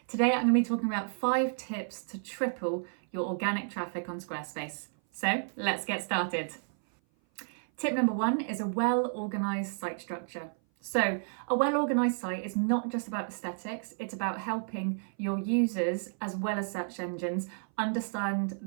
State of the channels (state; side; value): silent; left; 56 dB below the other